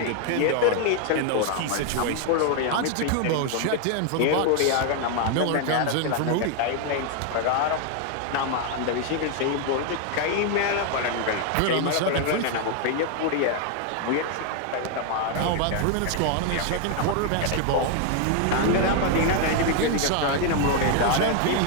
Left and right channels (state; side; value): different; both; correlation 0.00